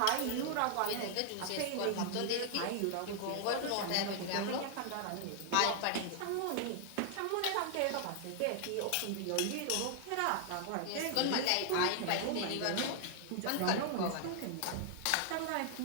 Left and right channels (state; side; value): different; both; correlation 0.00